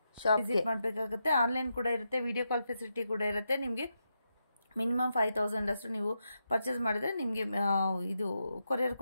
ಶಾಪ್ ವಿಸಿಟ್ ಮಾಡಬೇಕಾಗುತ್ತೆ. ಆನ್ಲೈನ್ ಕೂಡ ಇರುತ್ತೆ, ವಿಡಿಯೋ ಕಾಲ್ ಫೆಸಿಲಿಟಿ ಕೂಡ ಇರುತ್ತೆ. ನಿಮಗೆ ಮಿನಿಮಮ್ 5000 ಅಷ್ಟು ನೀವು ಪರ್ಚೇಸ್ ಮಾಡಿದ್ರೆ ನಿಮಗೆ ಇದು ಕೊರಿಯರ್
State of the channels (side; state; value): both; inverted; correlation -0.85